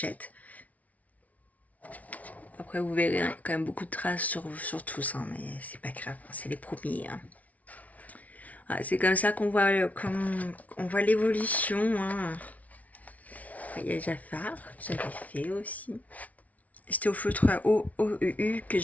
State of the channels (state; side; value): late; right; 0.070 ms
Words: Après, vous verrez, il y a quand même beaucoup de traces sur tous, hein, mais c'est pas grave, c'est les premiers, hein. Ah, c'est comme ça qu'on voit, on voit l'évolution, hein. Il y a Jafar, que j'avais fait aussi. C'était au feutre à OEU que